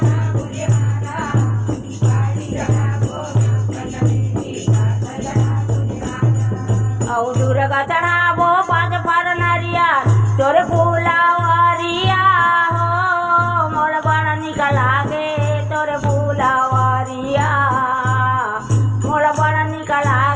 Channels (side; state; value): both; identical; correlation 1.00